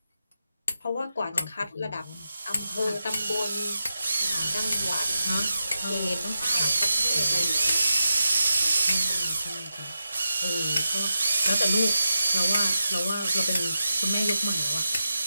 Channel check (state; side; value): inverted; both; correlation -0.90